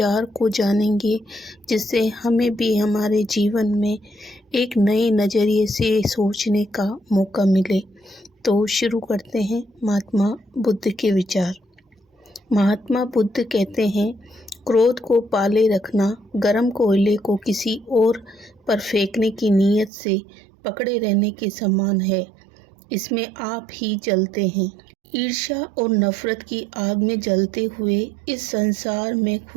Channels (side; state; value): left; drops out; at 19.9 s